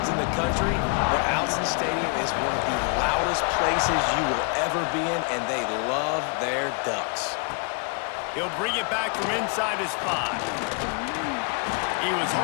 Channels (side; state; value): right; quieter; 36.8 dB